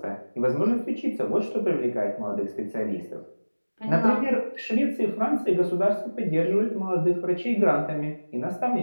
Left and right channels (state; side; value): inverted; both; correlation -1.00